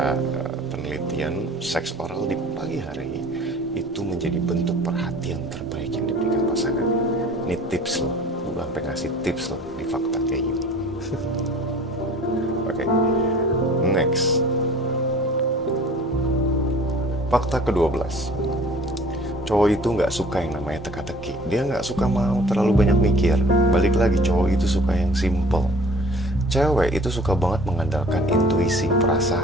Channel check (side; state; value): both; normal; correlation 0.48